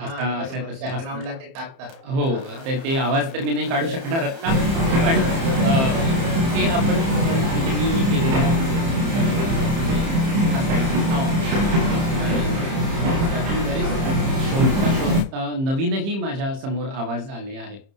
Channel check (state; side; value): late; left; 30 ms